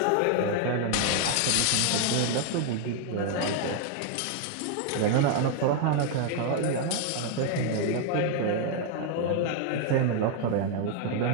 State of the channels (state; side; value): different; both; correlation 0.00